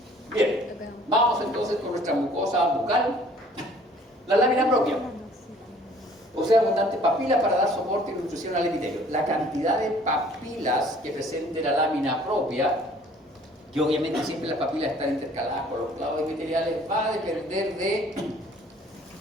Bien, vamos entonces con nuestra mucosa bucal. La lámina propia. Posee abundantes papilas para dar soporte y nutrición al epitelio. La cantidad de papilas que presente la lámina propia, que obviamente siempre las papilas están intercaladas con los clavos epiteliales, va a depender de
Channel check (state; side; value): normal; both; correlation 0.55